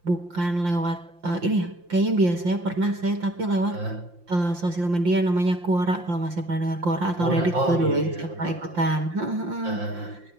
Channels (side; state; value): left; late; 5.7 ms